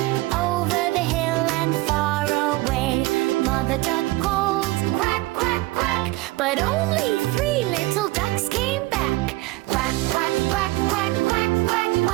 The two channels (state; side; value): quieter; left; 20.3 dB